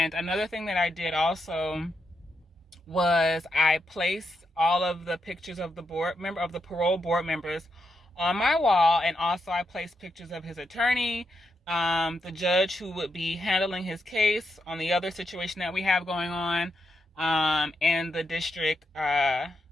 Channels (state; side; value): normal; both; correlation 0.83